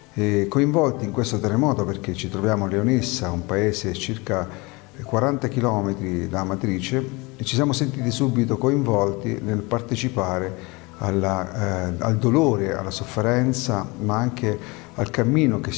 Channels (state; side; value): quieter; right; 25.7 dB